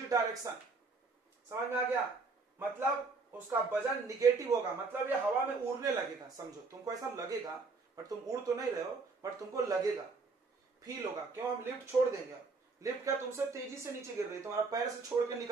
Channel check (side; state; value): left; quieter; 4.1 dB